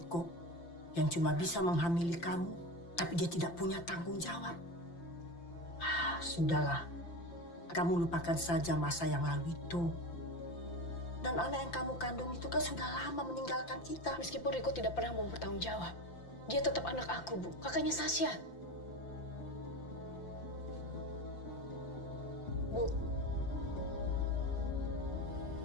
yang cuma bisa menghamili kamu, tapi dia tidak punya tanggung jawab. Sudahlah, kamu lupakan saja masa yang lalu itu. Dan anak yang kamu kandung itu kan sudah lama meninggalkan kita. Meskipun Riko tidak pernah mau bertanggung jawab, dia tetap anak aku, Bu. Kakaknya Sasha. Bu.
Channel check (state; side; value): late; right; 5.8 ms